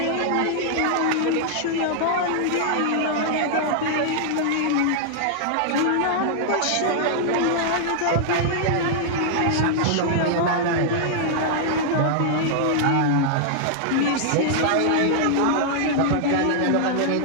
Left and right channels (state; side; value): different; both; correlation -0.01